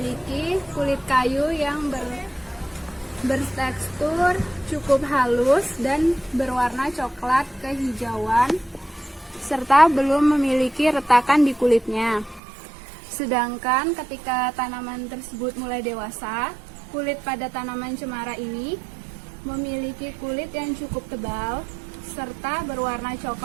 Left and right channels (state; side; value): drops out; left; at 12.4 s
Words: kulit kayu yang bertekstur cukup halus dan berwarna coklat kehijauan, serta belum memiliki retakan di kulitnya. Sedangkan ketika tanaman tersebut mulai dewasa, kulit pada tanaman cemara ini memiliki kulit yang cukup tebal serta berwarna